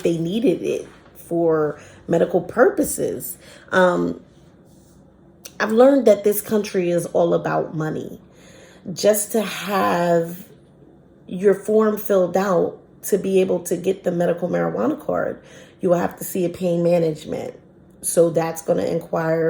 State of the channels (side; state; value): both; identical; correlation 1.00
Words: they needed it for medical purposes. I've learned that this country is all about money. Just to have your form filled out to be able to get the medical marijuana card, you will have to see a pain management. So that's going to